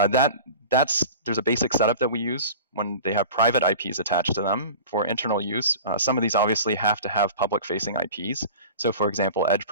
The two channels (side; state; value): both; inverted; correlation -0.37